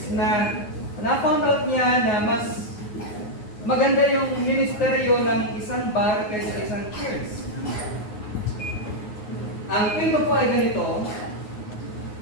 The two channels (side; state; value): right; late; 9.5 ms